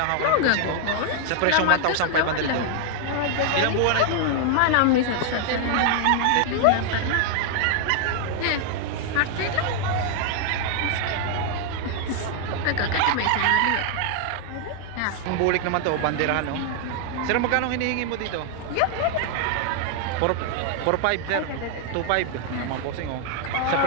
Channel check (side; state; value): both; different; correlation 0.00